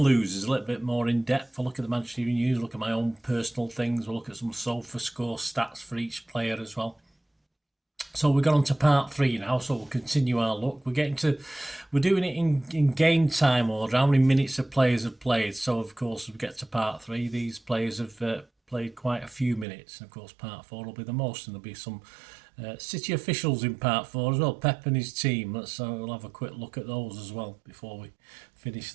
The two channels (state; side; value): drops out; left; at 19.7 s